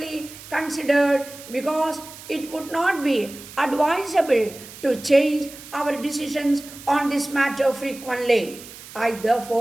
considered, because it would not be advisable to change our decisions on this matter frequently. I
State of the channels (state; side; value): noise; right; hiss, 16 dB below the sound